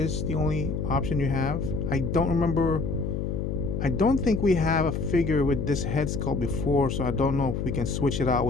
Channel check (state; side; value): noise; left; hum, 2 dB below the sound